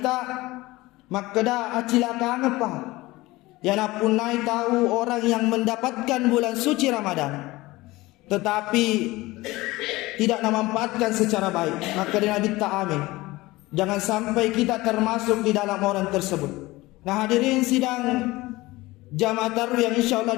tak makada acilaka ngapa yang pun naik tahu orang yang mendapatkan bulan suci Ramadan tetapi tidak memanfaatkan secara baik, maka Nabi tak amin. Jangan sampai kita termasuk di dalam orang tersebut. Nah hadirin sidang jamaah tarawih yang insyaallah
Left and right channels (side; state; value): right; quieter; 19.9 dB